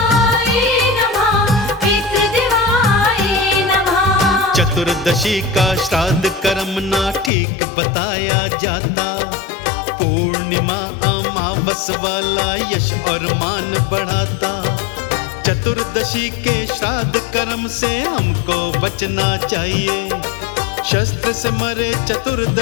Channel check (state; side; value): drops out; right; at 7.3 s